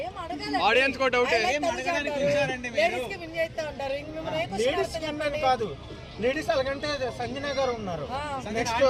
ఆడియన్స్ కూడా డౌట్ కాదు. లేడీస్ అలాగంటే సంజన గారు ఉన్నారు, నెక్స్ట్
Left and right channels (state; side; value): identical; both; correlation 1.00